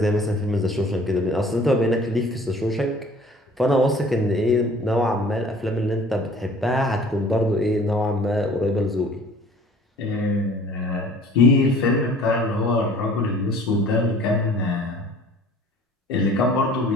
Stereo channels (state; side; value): normal; both; correlation 0.50